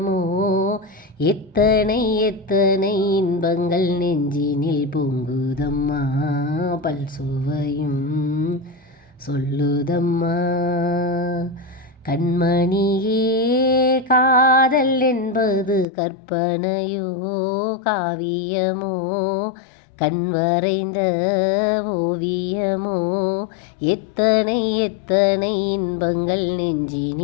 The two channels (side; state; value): right; drops out; at 15.9 s